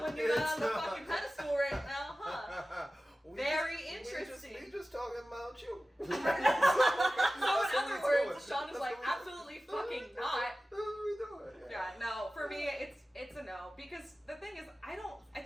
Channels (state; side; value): normal; both; correlation 0.96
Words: when you're it's on the not. fucking pedestal right now, huh? Very interesting. We just talking about you. So in other words, Shaun is like, absolutely fucking not. That's what we doing. Yeah, no. For me, it's a no because the thing is, I